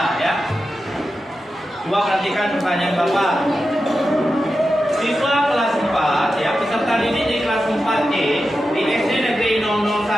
ya. Coba perhatikan pertanyaan Bapak. Siswa kelas 4 ya, peserta didik di kelas 4E di SD Negeri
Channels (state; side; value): normal; both; correlation 0.91